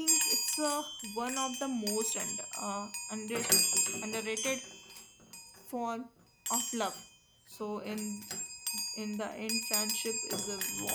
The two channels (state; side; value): identical; both; correlation 1.00